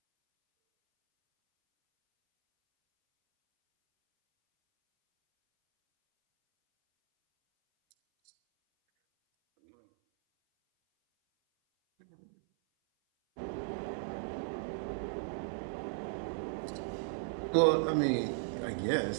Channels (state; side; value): silent; left; 54 dB below the other